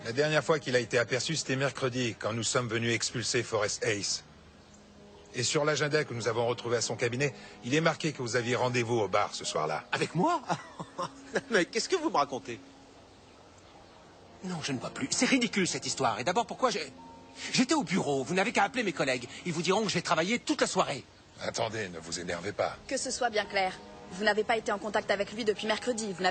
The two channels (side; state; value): both; identical; correlation 1.00